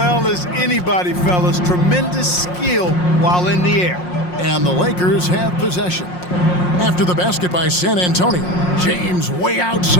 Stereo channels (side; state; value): right; late; 5.6 ms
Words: as anybody, fellas. Tremendous skill while in the air. And the Lakers have possession. After the basket by San Antonio, James way